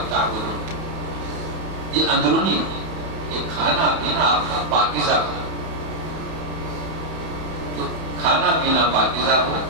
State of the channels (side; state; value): left; late; 31 ms